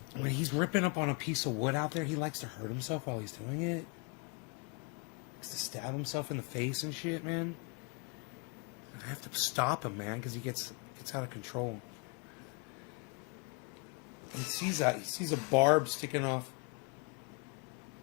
when he's ripping up on a piece of wood out there, he likes to hurt himself while he's doing it. He likes to stab himself in the face and shit, man. I have to stop him, man, because he gets out of control. He sees a barb sticking off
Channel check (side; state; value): right; quieter; 31.7 dB